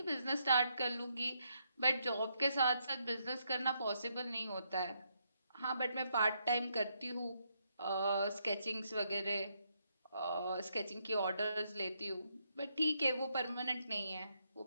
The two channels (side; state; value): both; inverted; correlation -0.77